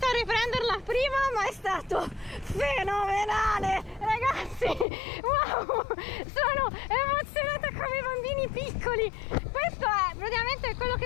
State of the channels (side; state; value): right; drops out; at 4.9 s